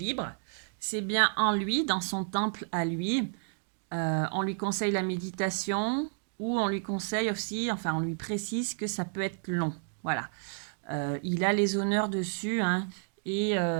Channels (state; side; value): silent; left; digital silence